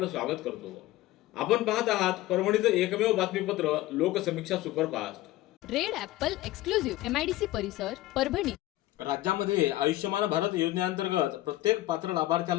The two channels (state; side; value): quieter; right; 16.5 dB